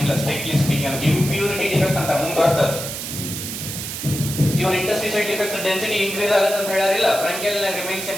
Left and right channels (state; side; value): noise; right; hiss, 6 dB below the sound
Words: ಸ್ಟ್ರಿಕ್ಟ್ಲಿ ಸ್ಪೀಕಿಂಗ್ ಇಂಪ್ಯೂರಿಟಿ ಡಿಫೆಕ್ಟ್ ಅಂತ ಮುಂದೆ ಬರ್ತದೆ. ಇವ್ರ ಇಂಟರ್ಸ್ಟಿಷಿಯಲ್ ಡಿಫೆಕ್ಟ್ಸ್ ಡೆನ್ಸಿಟಿ ಇನ್ಕ್ರೀಸ್ ಆಗುತ್ತೆ ಅಂತ ಹೇಳಾರಿಲ್ಲ, ಫ್ರಂಕೆಲ್ ರಿಮೈನ್ ಸೇಮ್